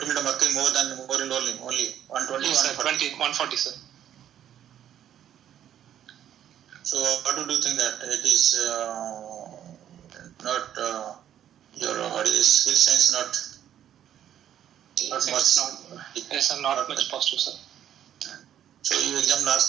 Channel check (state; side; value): quieter; left; 10.5 dB